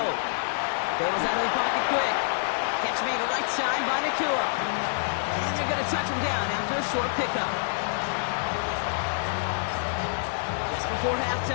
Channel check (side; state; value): right; silent; digital silence